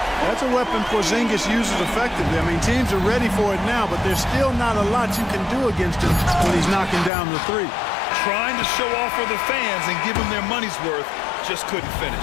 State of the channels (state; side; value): drops out; right; at 7.1 s